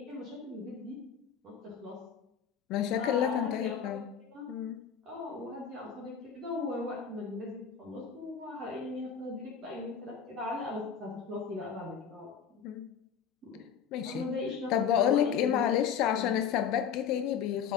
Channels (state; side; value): quieter; right; 7.5 dB